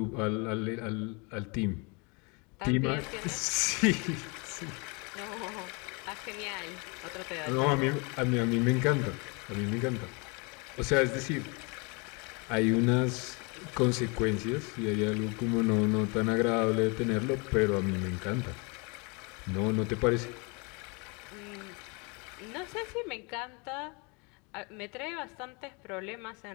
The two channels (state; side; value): quieter; right; 30.9 dB